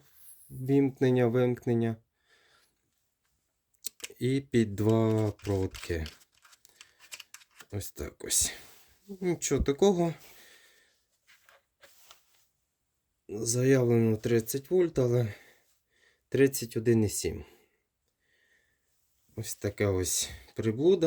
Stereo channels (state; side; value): identical; both; correlation 1.00